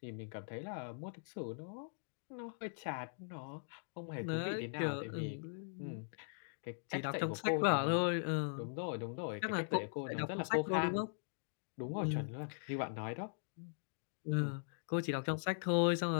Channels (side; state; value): right; silent; digital silence